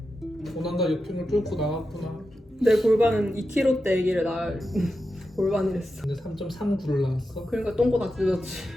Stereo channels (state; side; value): normal; both; correlation 0.90